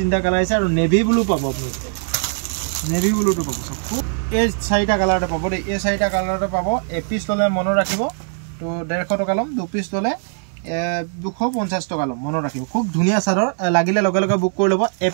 কালাৰ আহিছে আৰু নেভি ব্লু পাব আপোনালোকে নেভি ব্লুটো পাব চাওক খুব এই চাৰিটা কালাৰতে পাব দেই এই চাৰিটা কালাৰতে পাব এপিচ ল'লে মনত ৰাখিব তো 150 টকা ল'ম 2 পিচ ল'লে 250 টকা ল'ম মনত ৰাখিব খুব ধুনীয়া চাদৰ লাগিলে লগে লগে বুক কৰি ল'ব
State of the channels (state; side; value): silent; left; 65 dB below the other